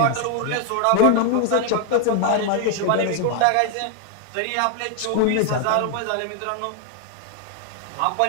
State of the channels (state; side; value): different; both; correlation 0.00